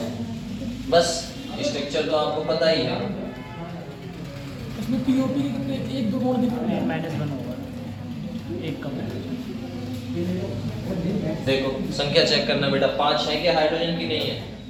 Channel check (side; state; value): both; identical; correlation 1.00